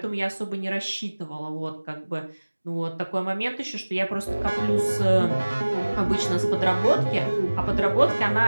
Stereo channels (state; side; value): inverted; both; correlation -1.00